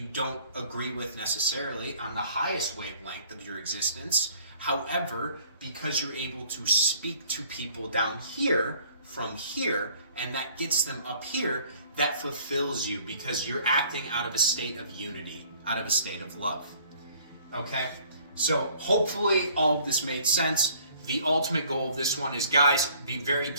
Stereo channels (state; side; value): inverted; both; correlation -0.56